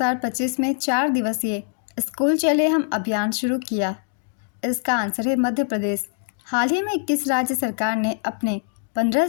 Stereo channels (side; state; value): right; silent; 63 dB below the other